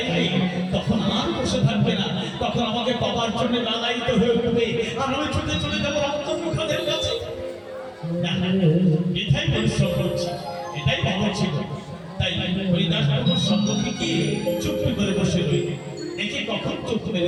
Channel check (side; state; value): both; identical; correlation 1.00